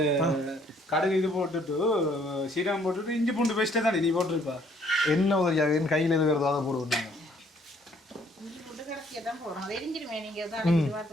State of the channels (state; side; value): normal; both; correlation 0.64